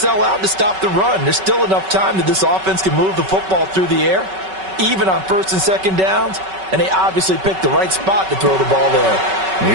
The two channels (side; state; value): left; late; 5.3 ms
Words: out to stop the run. There's still enough time that this offense can move the football through the air, even on 1st and 2nd downs, and they obviously picked the right spot to throw the ball there.